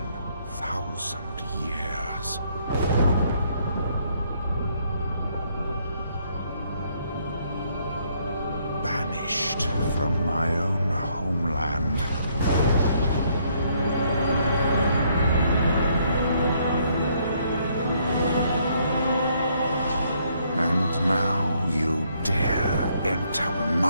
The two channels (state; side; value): inverted; both; correlation -0.69